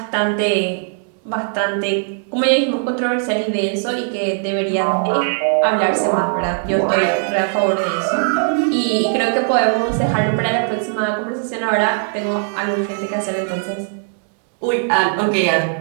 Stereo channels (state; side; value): silent; left; 64 dB below the other